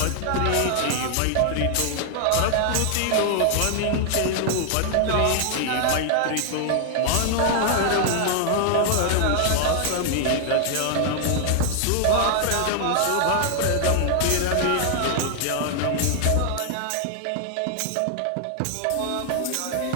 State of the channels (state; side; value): different; both; correlation 0.00